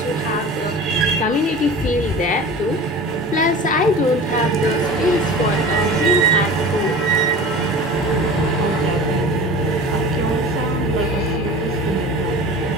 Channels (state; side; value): normal; both; correlation 0.37